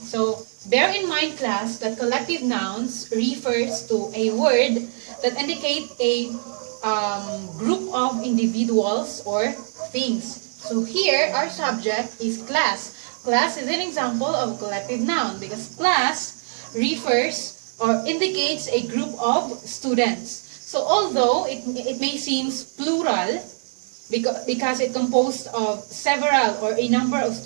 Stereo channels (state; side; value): silent; left; digital silence